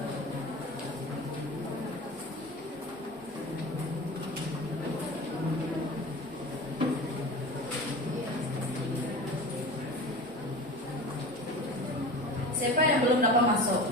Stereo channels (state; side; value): normal; both; correlation 0.34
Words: Siapa yang belum dapat masuk?